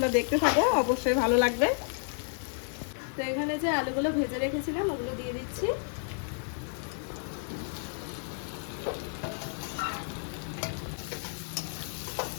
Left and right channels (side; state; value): right; silent; 57 dB below the other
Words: দেখতে থাকো, অবশ্যই ভালো লাগবে। তো এখানে যে আলুগুলো ভেজে রেখেছিলাম ওগুলো দিয়ে দিচ্ছি।